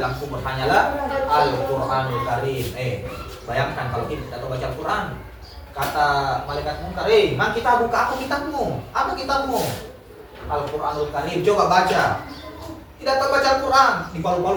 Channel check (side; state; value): both; identical; correlation 1.00